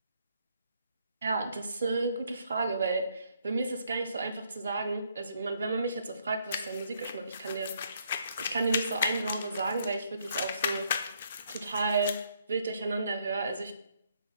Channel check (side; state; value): both; inverted; correlation -0.70